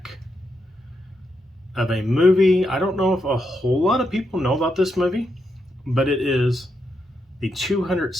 of a movie. I don't know if a whole lot of people know about this movie, but it is the 200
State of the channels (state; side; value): normal; both; correlation 0.82